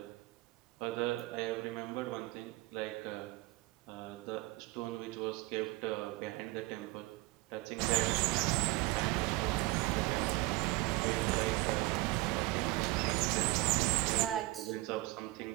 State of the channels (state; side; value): quieter; left; 21.0 dB